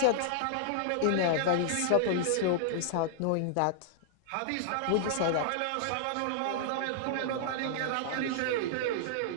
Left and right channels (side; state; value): both; different; correlation -0.01